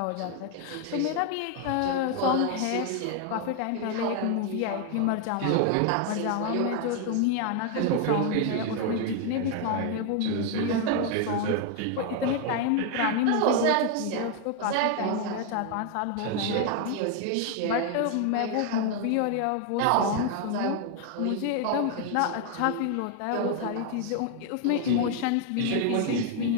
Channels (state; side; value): different; both; correlation 0.00